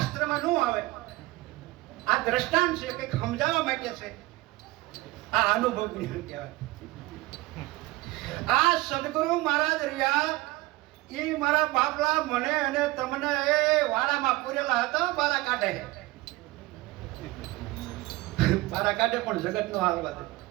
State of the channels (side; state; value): left; quieter; 19.8 dB